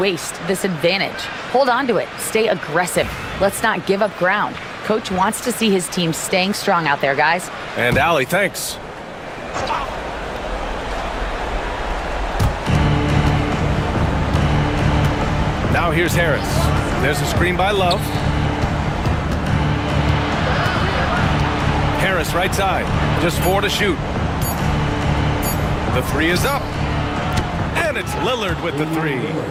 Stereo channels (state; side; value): identical; both; correlation 1.00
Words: this advantage. Hold on to it. Stay aggressive. Let's not give up ground. Coach wants to see his team staying strong out there, guys. And Allie, thanks. Now here's Harris. There's a screen by Love. Harris right side. Just 4 to shoot. The 3 is up. And it's Lillard with the 3.